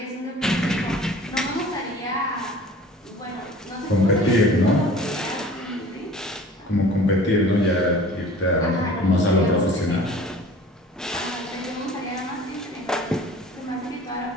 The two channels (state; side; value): normal; both; correlation 0.45